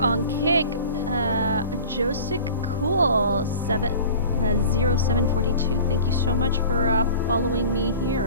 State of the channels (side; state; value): both; inverted; correlation -0.40